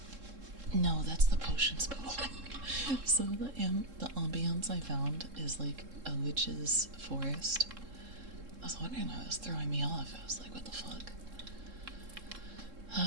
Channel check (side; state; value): left; late; 3.7 ms